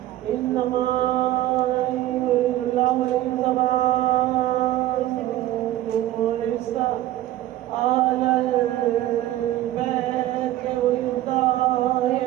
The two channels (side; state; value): left; quieter; 14.6 dB